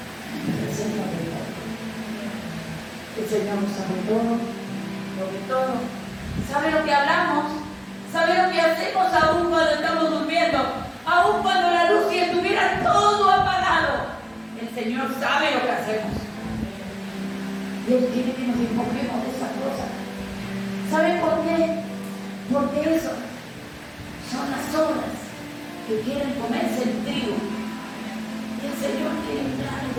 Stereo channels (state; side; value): identical; both; correlation 1.00